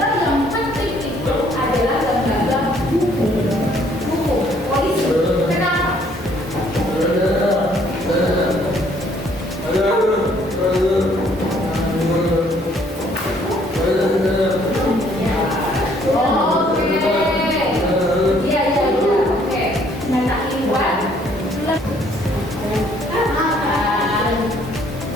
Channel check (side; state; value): both; normal; correlation 0.63